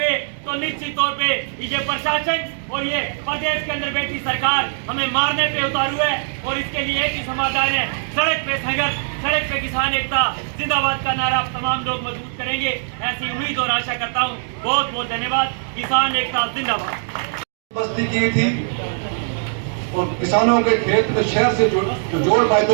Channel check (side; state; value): left; silent; digital silence